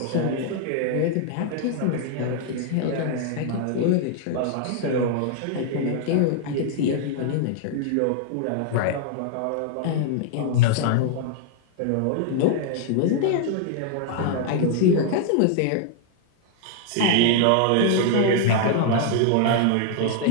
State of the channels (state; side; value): different; both; correlation 0.00